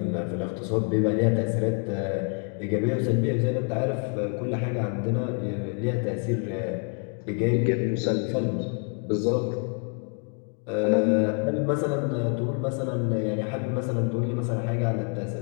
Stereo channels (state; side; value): quieter; right; 39.1 dB